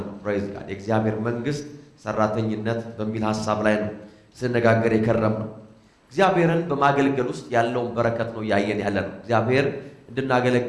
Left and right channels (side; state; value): both; identical; correlation 1.00